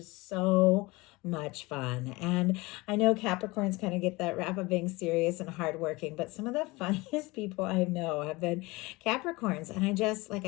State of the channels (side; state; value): right; quieter; 23.0 dB